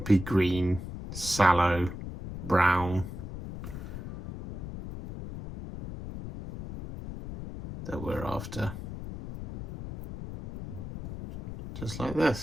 green, sallow brown that we're after. Just like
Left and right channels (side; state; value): left; noise; rumble, 9 dB below the sound